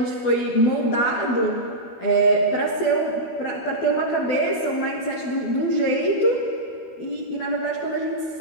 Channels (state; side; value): late; right; 12 ms